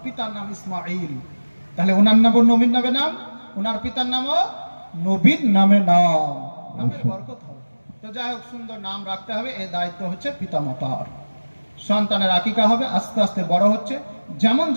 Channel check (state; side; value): inverted; both; correlation -1.00